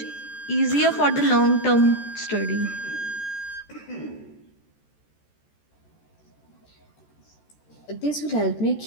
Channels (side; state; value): right; late; 14 ms